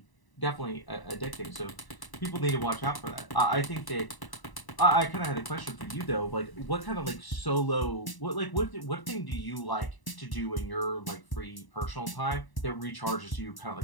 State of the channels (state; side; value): late; right; 1.0 ms